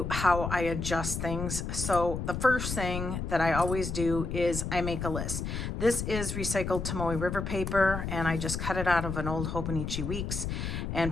how I adjust things. So the first thing that I always do is I make a list. This is recycled Tomoe River paper, and I just cut it out of an old Hobonichi Weeks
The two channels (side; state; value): left; noise; rumble, 4 dB below the sound